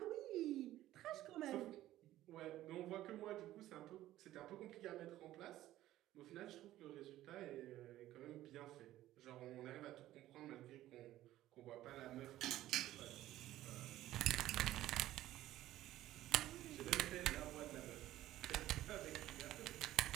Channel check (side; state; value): left; quieter; 14.5 dB